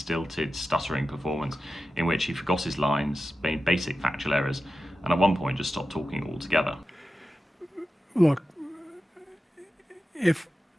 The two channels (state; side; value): normal; both; correlation 0.93